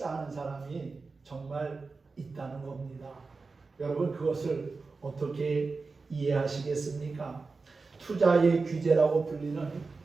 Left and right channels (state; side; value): quieter; left; 4.2 dB